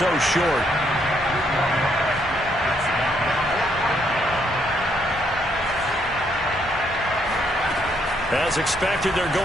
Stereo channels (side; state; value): both; normal; correlation 0.73